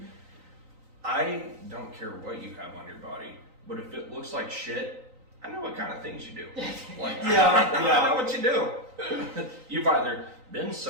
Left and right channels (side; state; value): left; late; 3.9 ms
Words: I don't care what you have on your body, but if it looks like shit, I know what kind of things you do. I know what you do. You've either been